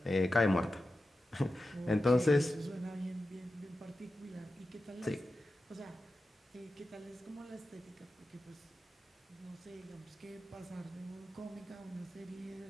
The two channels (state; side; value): normal; both; correlation 0.92